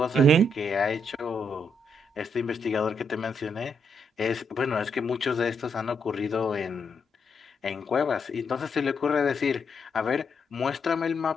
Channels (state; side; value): normal; both; correlation 0.77